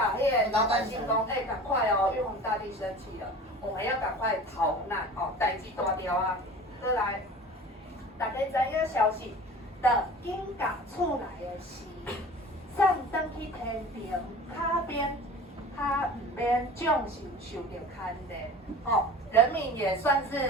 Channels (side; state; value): both; normal; correlation 0.39